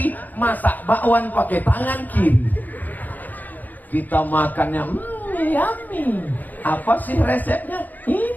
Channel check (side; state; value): right; late; 0.083 ms